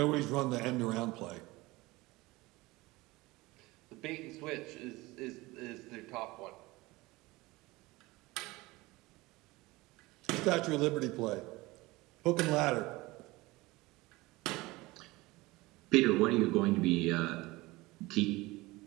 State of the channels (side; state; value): left; quieter; 21.1 dB